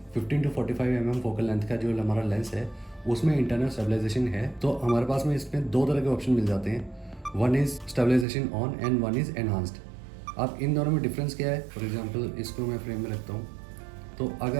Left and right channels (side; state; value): left; drops out; at 8.2 s